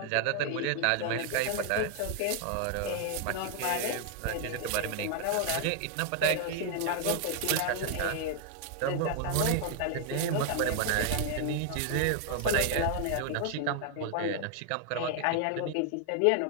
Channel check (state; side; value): different; both; correlation 0.00